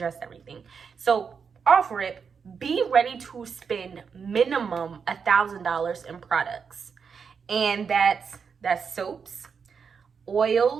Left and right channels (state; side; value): quieter; left; 6.1 dB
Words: everything. So off rip, be ready to spend minimum $1,000 in products. And that's soaps,